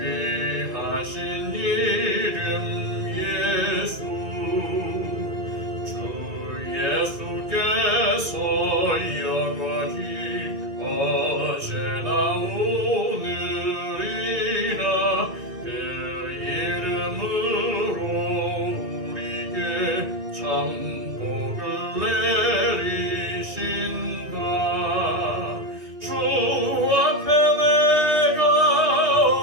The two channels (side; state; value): left; late; 2.3 ms